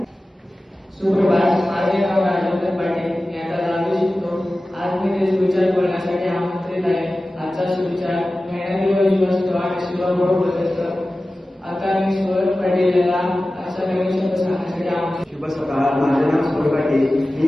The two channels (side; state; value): both; normal; correlation 0.96